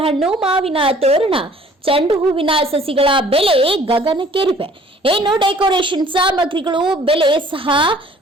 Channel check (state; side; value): normal; both; correlation 0.55